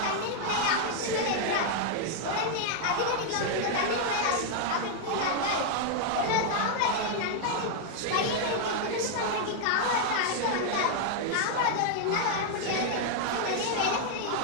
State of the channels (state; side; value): different; both; correlation 0.00